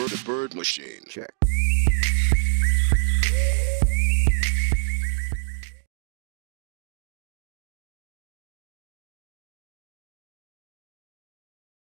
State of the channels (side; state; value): left; silent; digital silence